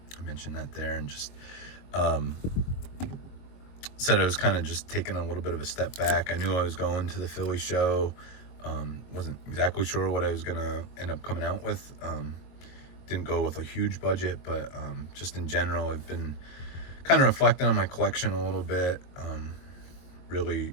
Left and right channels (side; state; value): right; late; 22 ms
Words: mentioned that there, and just said I was kind of just taking a little bit of a step back. I knew I was going to the Philly show. Wasn't exactly sure what I was gonna end up coming out with. Didn't go with a huge budget, but just in general, I've been kind of reflecting on my collection a little bit. Really,